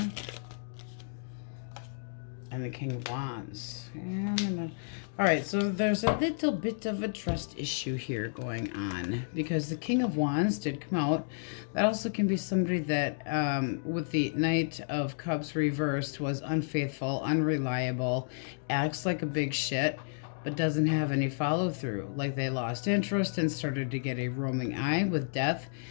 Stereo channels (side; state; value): right; silent; digital silence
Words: And the King of Wands. And all right, so there's a little bit of a trust issue here going on, because the King of Wands did come out. That also can be somebody that, with the Knight of Cups reversed, was unfaithful, unreliable, acts like a big shit, but doesn't have any follow through. Like they lost interest and started to get a roaming eye with Death.